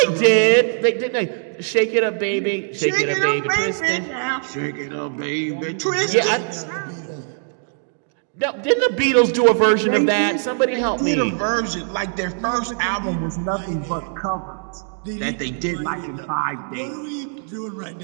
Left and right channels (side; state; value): left; silent; 65 dB below the other